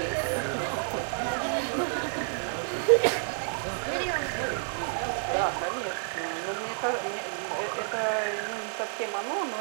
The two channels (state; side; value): silent; left; digital silence